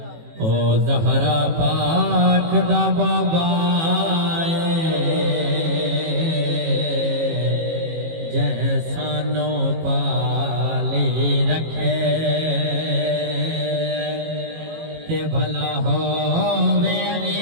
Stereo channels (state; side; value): late; left; 18 ms